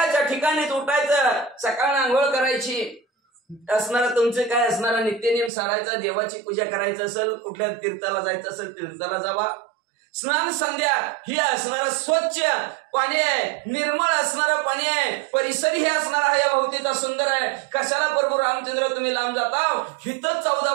ठिकाणीच उठायचं, सकाळ आंघोळ करायची असणारा तुमचे काय असणारा नित्यनियम सारायचा, देवाची पूजा करायचं असेल, कुठल्या तीर्थाला जायचं असेल तीर्थाला जावा. स्नान संध्या ही असणारं स्वच्छ पाणी आहे, निर्मळ असणारं पाणी आहे, परिसर हे असणारा हा या भोवतीचा सुंदर आहे. कशाला प्रभू रामचंद्र तुम्ही लांब जाता, हिथं 14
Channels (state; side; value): drops out; left; at 5.5 s